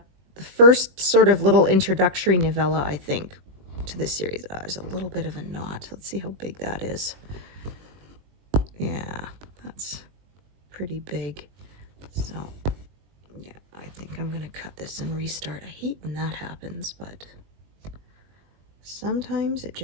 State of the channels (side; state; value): left; late; 21 ms